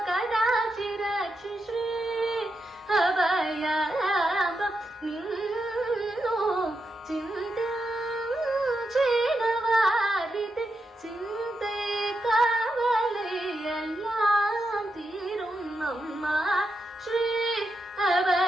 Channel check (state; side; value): normal; both; correlation 0.85